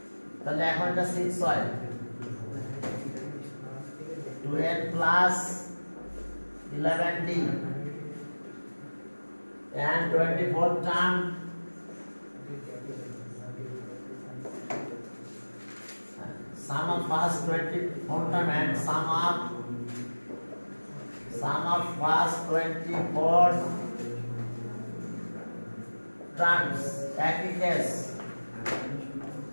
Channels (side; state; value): both; inverted; correlation -1.00